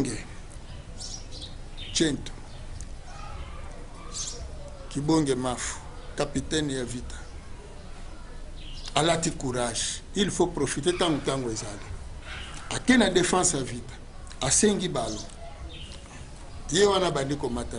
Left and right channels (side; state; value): both; identical; correlation 1.00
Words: Chento Kibonge Mafu capitaine ya vita alati courage il faut profiter tango ezali akena défense ya vita asengi balo ye wana bandi